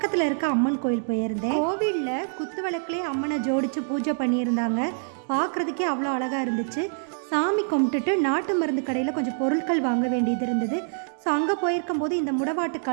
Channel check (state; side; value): silent; left; digital silence